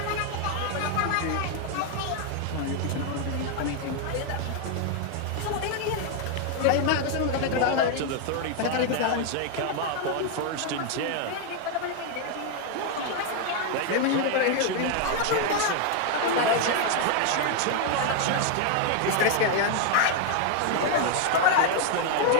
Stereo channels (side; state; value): both; different; correlation 0.00